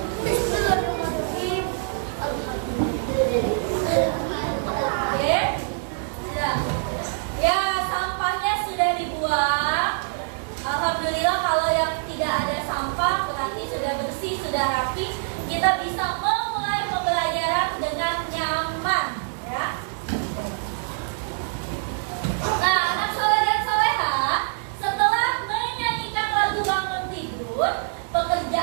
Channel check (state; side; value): silent; left; digital silence